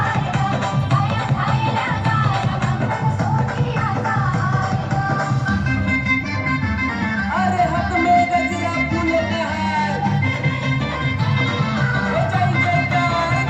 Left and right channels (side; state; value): both; identical; correlation 1.00